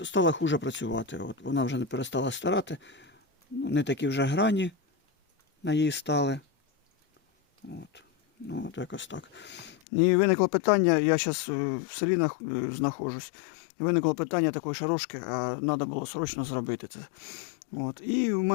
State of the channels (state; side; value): drops out; right; at 9.8 s